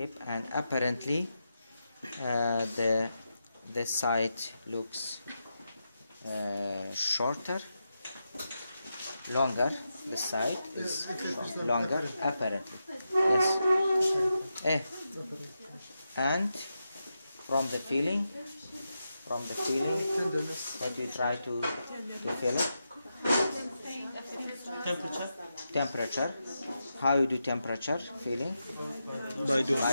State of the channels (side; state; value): both; inverted; correlation -0.87